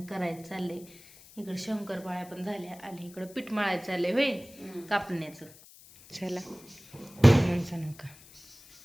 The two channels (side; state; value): left; noise; hiss, 22 dB below the sound